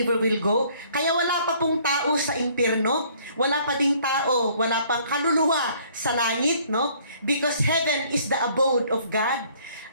will go. Kaya wala pa pong tao sa impyerno, wala pa ding tao, wala pang kaluluwa sa langit, no? Because heaven is the abode of God.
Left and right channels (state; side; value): inverted; both; correlation -0.60